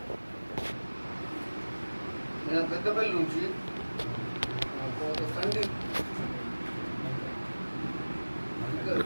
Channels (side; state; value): both; inverted; correlation -1.00